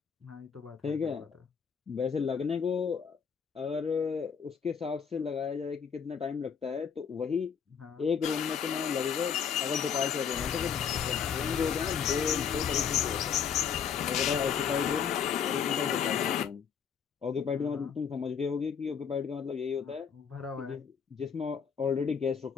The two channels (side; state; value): right; quieter; 7.1 dB